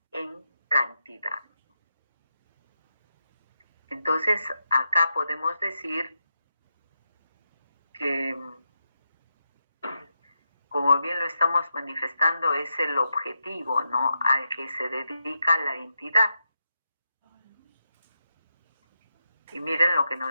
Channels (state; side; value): inverted; both; correlation -0.86